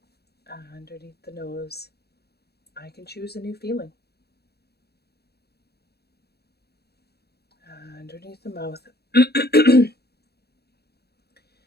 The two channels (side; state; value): right; late; 0.47 ms